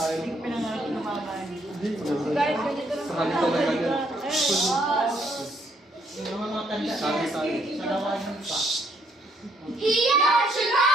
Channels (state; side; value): normal; both; correlation 0.70